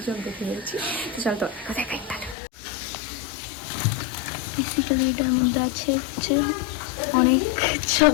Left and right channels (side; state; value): right; drops out; at 2.4 s